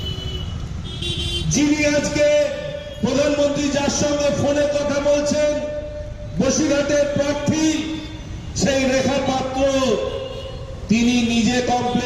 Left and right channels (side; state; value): both; identical; correlation 1.00